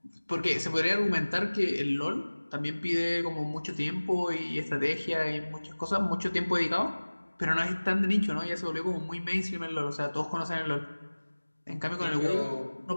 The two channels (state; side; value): inverted; both; correlation -1.00